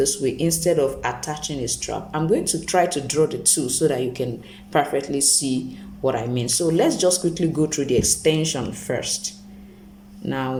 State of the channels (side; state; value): both; identical; correlation 1.00